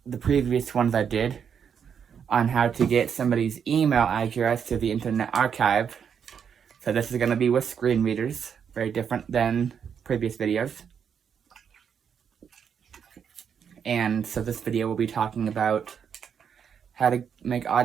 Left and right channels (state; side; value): quieter; left; 7.4 dB